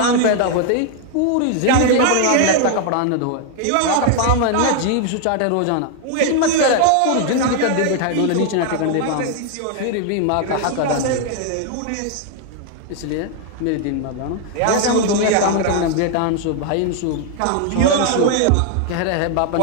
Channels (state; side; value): different; both; correlation 0.00